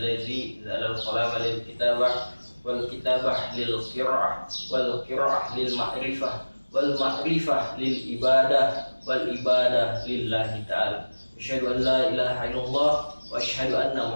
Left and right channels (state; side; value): inverted; both; correlation -1.00